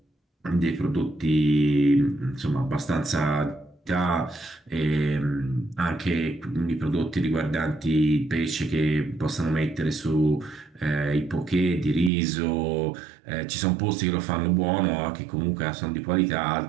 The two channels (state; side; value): drops out; left; at 12.1 s